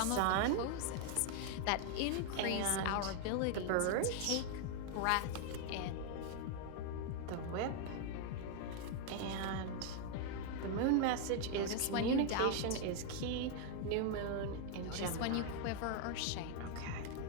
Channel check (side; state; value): both; different; correlation 0.00